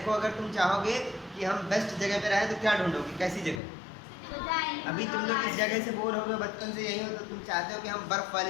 अगर तुम चाहोगे कि हम बेस्ट जगह पे रहें तो क्या ढूंढोगे, कैसी जगह। अभी तुम लोग इस जगह से बोर हो गए, बचपन से यही हो, तो तुम चाहते हो कि हम बर्फ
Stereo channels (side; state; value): right; drops out; at 3.6 s